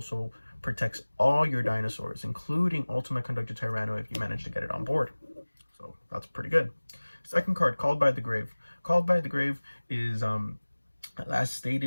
protects all your dinosaurs, including Ultimate Conductor Tyranno if you manage to get it on board. So that's pretty good. Second card, Called by the Grave. Called by the Grave is, as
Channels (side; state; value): both; inverted; correlation -1.00